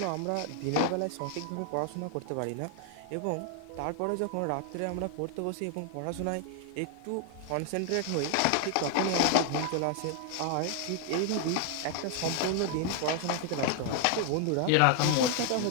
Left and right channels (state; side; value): different; both; correlation 0.00